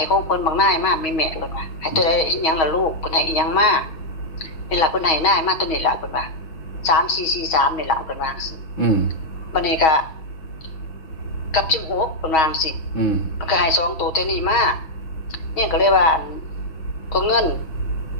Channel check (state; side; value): late; right; 6.3 ms